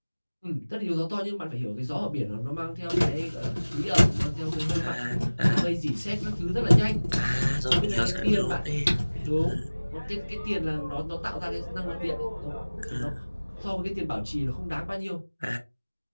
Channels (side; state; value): both; inverted; correlation -1.00